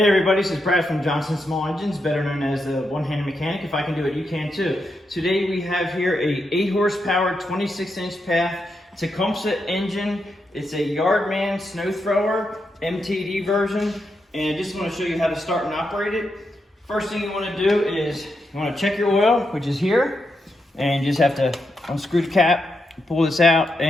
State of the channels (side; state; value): both; normal; correlation 0.84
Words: everybody, this is Brad from Johnson Small Engines, better known as the one-handed mechanic. If I can do it, you can too. Today we have here a 8 horsepower, 26-inch path Tecumseh engine. It's a Yardman snow thrower, MTD version, and I just want to show you how to start and operate it. First thing you want to do is you want to check your oil, which is here, and you just have to unscrew the cap, pull this out,